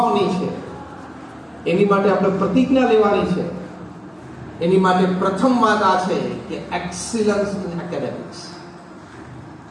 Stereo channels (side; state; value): both; identical; correlation 1.00